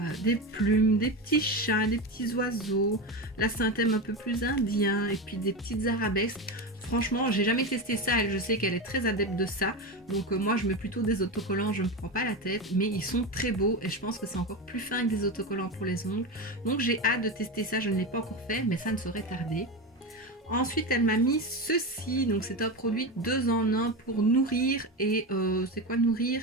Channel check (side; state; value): both; normal; correlation 0.19